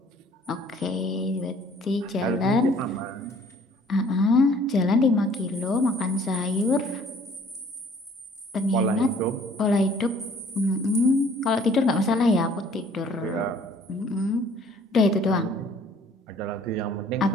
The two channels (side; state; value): both; normal; correlation 0.56